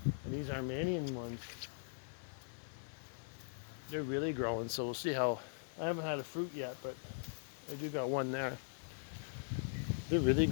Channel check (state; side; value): silent; right; digital silence